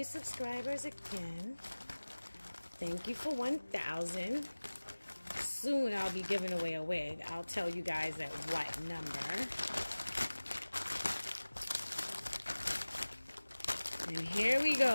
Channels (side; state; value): both; inverted; correlation -1.00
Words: subscribers again. Thank you for 1,000. Soon I'll be giving away a wig. I'll tell you guys at what number. And here we